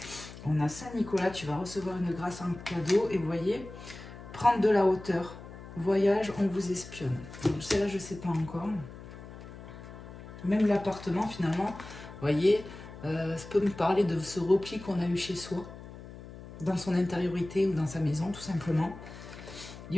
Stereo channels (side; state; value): left; noise; hum, 14 dB below the sound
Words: On a Saint-Nicolas, tu vas recevoir une grâce en cadeau. Et vous voyez, prendre de la hauteur. Voyage, on vous espionne. Celle-là, je ne sais pas encore. Même l'appartement, finalement, vous voyez, ça peut me parler de ce repli qu'on a eu chez soi, dans son intériorité ou dans sa maison, tout simplement. Il